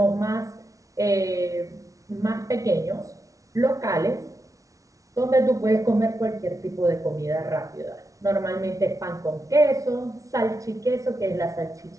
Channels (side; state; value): left; late; 0.16 ms